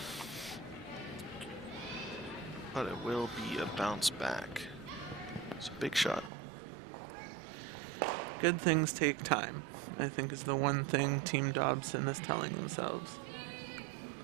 But it will be a bounce back. It's a big shot. Good things take time, I think, is the one thing Team Dobson is telling themselves.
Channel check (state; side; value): drops out; left; at 6.3 s